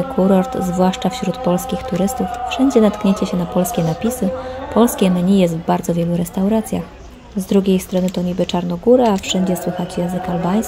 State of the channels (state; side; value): identical; both; correlation 1.00